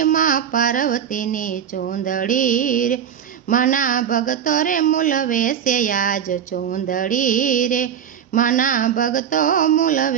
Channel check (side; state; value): left; quieter; 8.6 dB